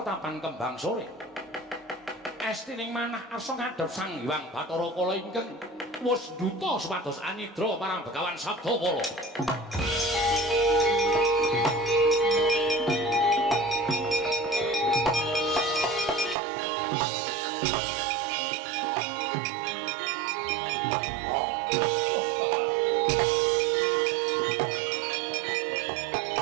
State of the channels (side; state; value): left; drops out; at 16.4 s